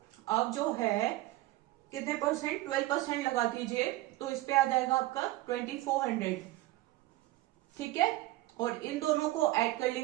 आप जो है कितने परसेंट? 12% लगा दीजिए तो इस पे आ जाएगा आपका 2400। ठीक है, और इन दोनों को ऐड कर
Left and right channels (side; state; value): left; quieter; 17.4 dB